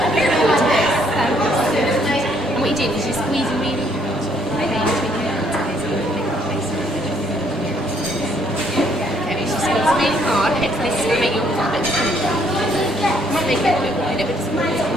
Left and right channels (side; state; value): both; normal; correlation 0.67